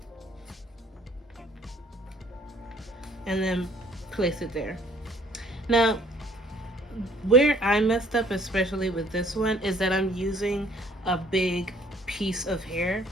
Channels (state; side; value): normal; both; correlation 0.59